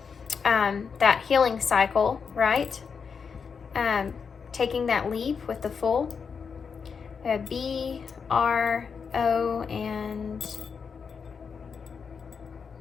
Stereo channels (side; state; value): right; quieter; 6.0 dB